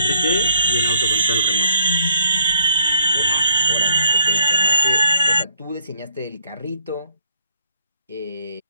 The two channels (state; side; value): inverted; both; correlation -0.67